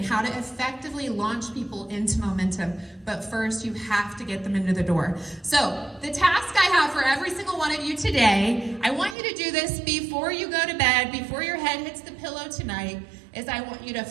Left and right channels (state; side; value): drops out; left; at 9.2 s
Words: how to effectively launch people into momentum. But first you have to get them into the door. So the task I have for every single one of you today, I want you to do this before you go to bed, before your head hits the pillow tonight, is I want you to